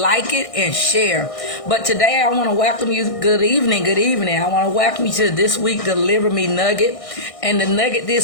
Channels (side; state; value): right; late; 1.6 ms